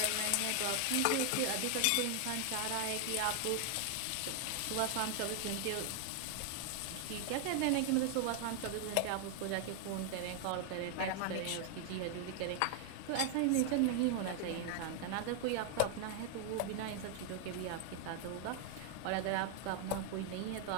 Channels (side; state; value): both; different; correlation 0.00